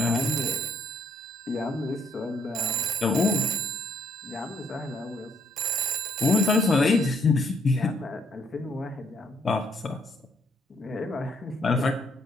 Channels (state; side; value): normal; both; correlation 0.69